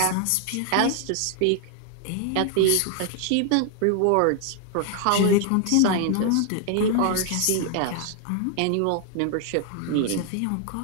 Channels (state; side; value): different; both; correlation 0.00